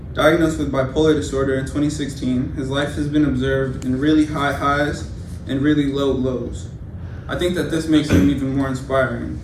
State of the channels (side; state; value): both; identical; correlation 1.00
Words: Diagnosed with bipolar disorder in 2016, his life has been observed in really high highs and really low lows. I think that this makes him even more inspiring,